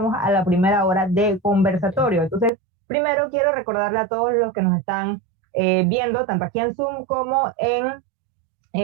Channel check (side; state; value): left; drops out; at 2.5 s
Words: a la primera hora de conversatorio. Entonces, primero quiero recordarle a todos los que nos están viendo, tanto aquí en Zoom como en